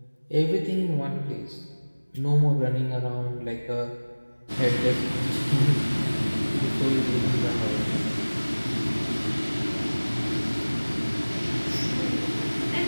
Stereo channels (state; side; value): inverted; both; correlation -1.00